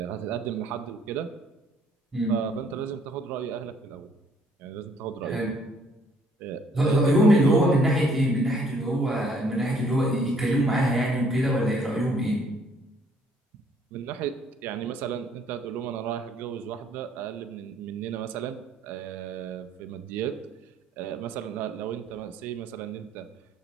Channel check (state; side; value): normal; both; correlation 0.63